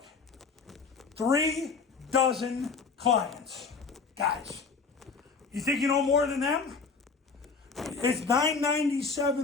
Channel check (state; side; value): quieter; right; 4.9 dB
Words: 3 dozen clients. Guys, you think you know more than them? It's